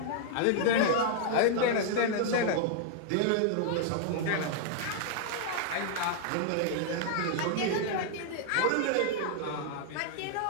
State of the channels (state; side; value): different; both; correlation -0.01